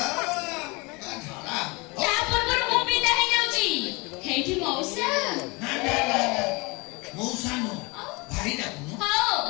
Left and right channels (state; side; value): quieter; right; 26.7 dB